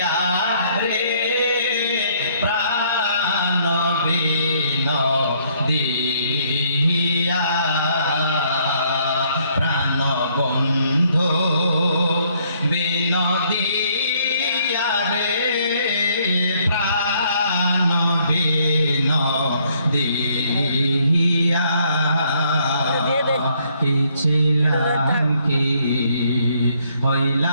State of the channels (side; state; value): both; inverted; correlation -0.67